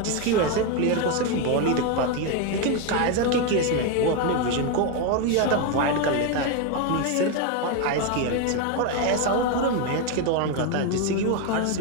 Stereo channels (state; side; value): different; both; correlation 0.02